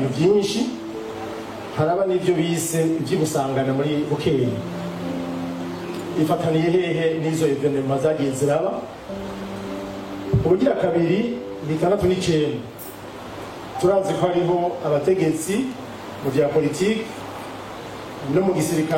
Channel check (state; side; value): identical; both; correlation 1.00